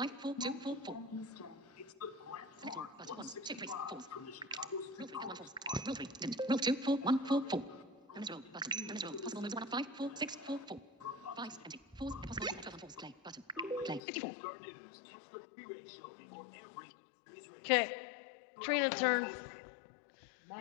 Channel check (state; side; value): drops out; right; at 14.0 s